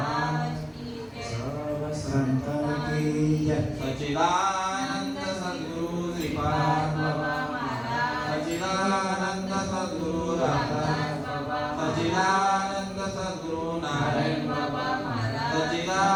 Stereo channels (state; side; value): identical; both; correlation 1.00